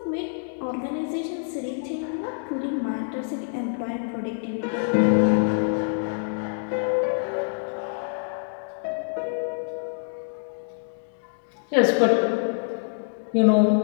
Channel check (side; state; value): right; silent; digital silence